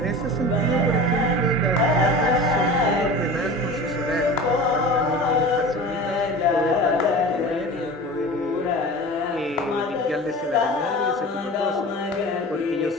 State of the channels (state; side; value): normal; both; correlation 0.35